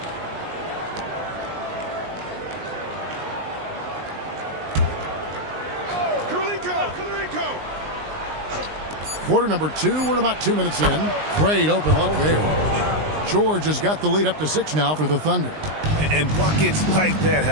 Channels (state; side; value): late; left; 19 ms